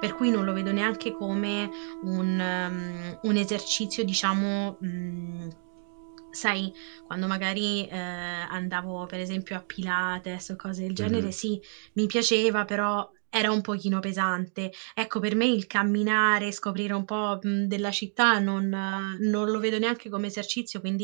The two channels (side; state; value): left; silent; 59 dB below the other